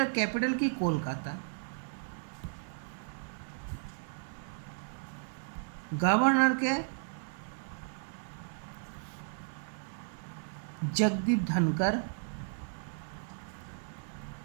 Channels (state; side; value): silent; left; 55 dB below the other